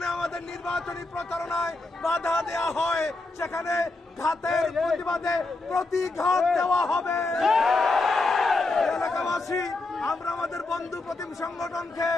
আমাদের নির্বাচনী প্রচারণায় বাধা দেওয়া হয় সেখানে ঘাতের প্রতিবাদে প্রতিঘাত দেওয়া হবে। এলাকাবাসী, আমরা আমাদের বন্ধু প্রতিম সংগঠনকে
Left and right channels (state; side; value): quieter; right; 3.2 dB